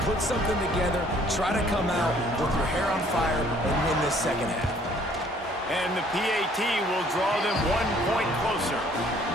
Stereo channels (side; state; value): both; normal; correlation 0.59